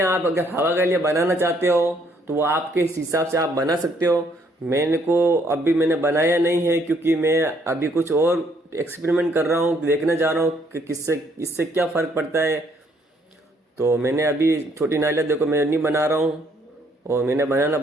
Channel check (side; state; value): both; normal; correlation 0.67